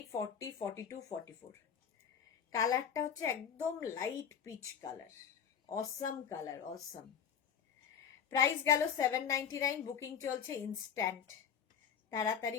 40, 42, 44। কালারটা হচ্ছে একদম light peach colour, awesome colour, awesome. Price গেল 799, বুকিং চলছে ইনস্ট্যান্ট,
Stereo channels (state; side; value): quieter; right; 7.7 dB